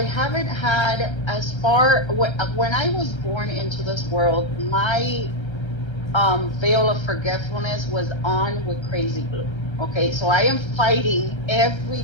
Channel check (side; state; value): right; late; 1.3 ms